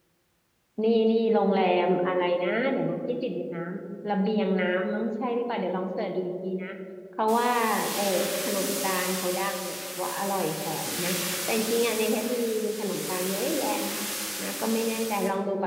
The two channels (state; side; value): identical; both; correlation 1.00